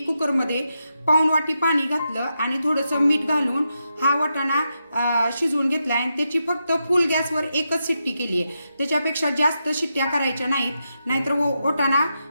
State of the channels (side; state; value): both; inverted; correlation -0.86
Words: पाऊण वाटी पाणी घातलं आणि थोडंसं मीठ घालून हा वाटाणा शिजवून घेतलाय. आणि त्याची फक्त फुल गॅसवर 1च शिट्टी केली आहे. त्याच्यापेक्षा जास्त शिट्ट्या करायच्या नाहीत, नाहीतर वाटाणा